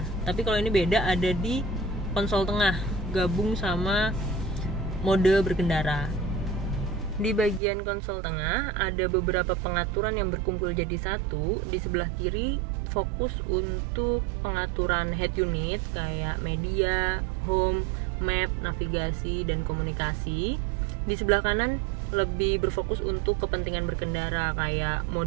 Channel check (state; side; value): drops out; left; at 7.6 s